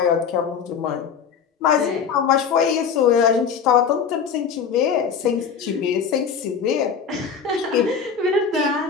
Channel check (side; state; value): right; quieter; 6.6 dB